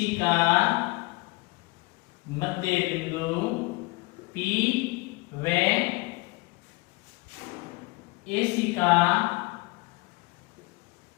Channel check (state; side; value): quieter; right; 24.7 dB